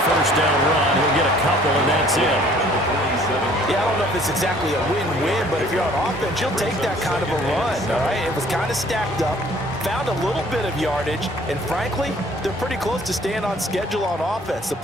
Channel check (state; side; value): normal; both; correlation 0.56